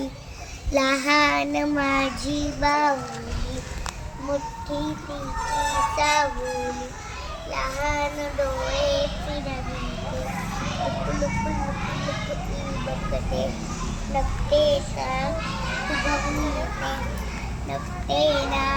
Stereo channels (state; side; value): identical; both; correlation 1.00